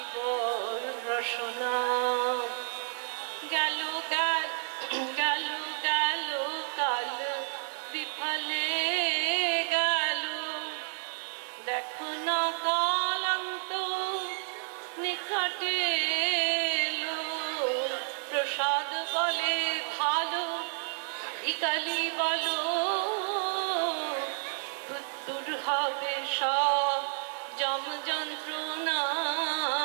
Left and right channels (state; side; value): silent; left; digital silence